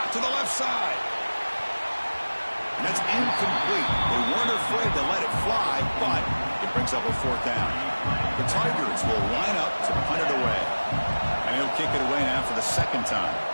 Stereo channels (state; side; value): inverted; both; correlation -1.00